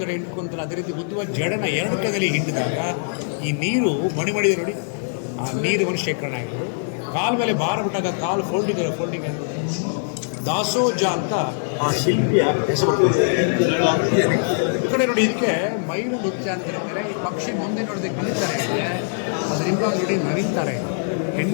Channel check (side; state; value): right; silent; 64 dB below the other